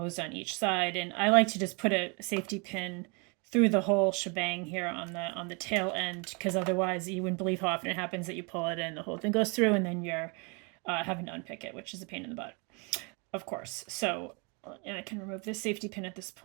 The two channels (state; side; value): quieter; left; 32.7 dB